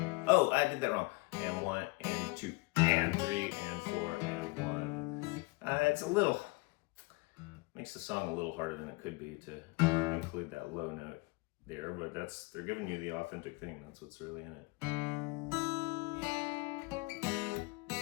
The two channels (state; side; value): quieter; right; 25.5 dB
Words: Oh, I did that wrong. And 1 and 2 and 3 and 4 and 1. It's a little, makes the song a little harder than it could be to include that low note there, but they're giving you the authentic thing. That's what's really in it.